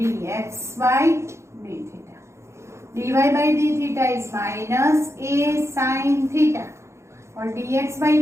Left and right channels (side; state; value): left; late; 0.13 ms